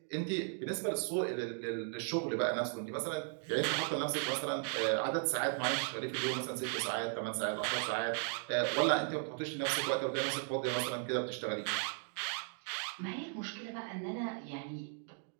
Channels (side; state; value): left; silent; 53 dB below the other